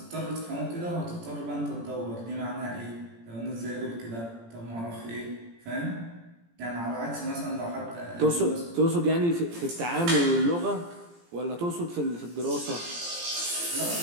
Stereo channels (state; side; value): late; left; 17 ms